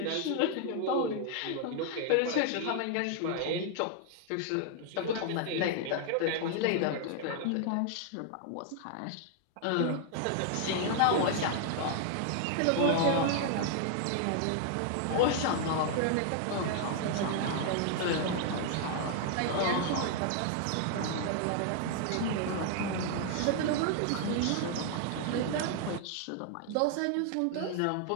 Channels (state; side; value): different; both; correlation 0.00